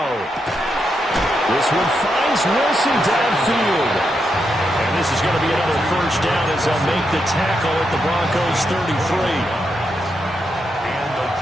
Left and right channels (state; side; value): normal; both; correlation 0.83